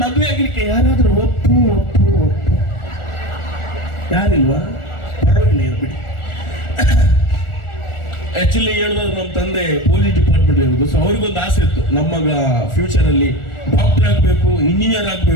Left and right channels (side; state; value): right; late; 1.4 ms